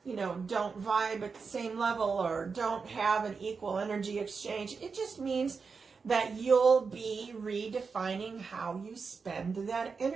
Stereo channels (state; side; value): quieter; left; 5.1 dB